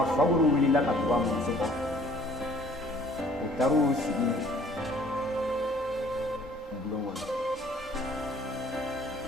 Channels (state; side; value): normal; both; correlation 0.56